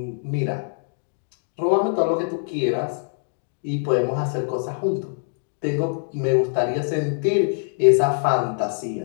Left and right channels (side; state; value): right; silent; digital silence